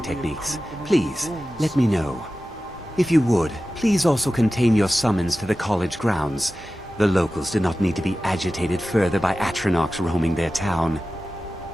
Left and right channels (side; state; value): both; normal; correlation 0.95